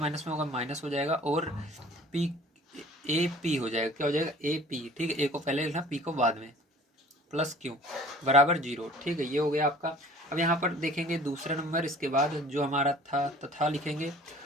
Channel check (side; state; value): both; normal; correlation 0.49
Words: में होगा, माइनस हो जाएगा, और p ए पी हो जाएगा, क्या हो जाएगा, ए पी। ठीक है, a को पहले लिखना, p को बाद में, प्लस क्यू बराबर 0। ठीक है, ये हो गया आपका। अब यहाँ पर देखेंगे दूसरा नंबर, इसके बाद जो हमारा था तथा लिखेंगे,